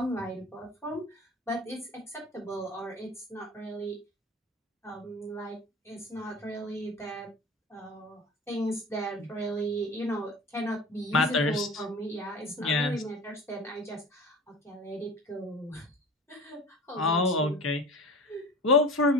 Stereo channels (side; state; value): both; normal; correlation 0.37